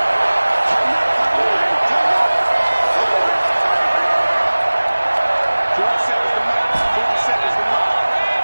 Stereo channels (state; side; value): inverted; both; correlation -1.00